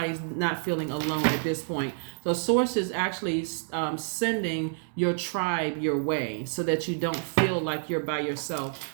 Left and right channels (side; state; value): left; silent; digital silence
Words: not feeling alone at this point. So Source is actually sending your tribe your way so that you don't feel like you're by yourself.